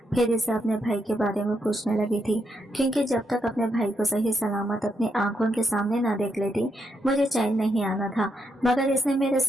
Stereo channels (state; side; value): normal; both; correlation 0.80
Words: फिर इसे अपने भाई के बारे में पूछने लगी थी, क्योंकि जब तक अपने भाई को सही सलामत अपनी आंखों के सामने ना देख लेती मुझे चैन नहीं आना था। मगर इसने मेरे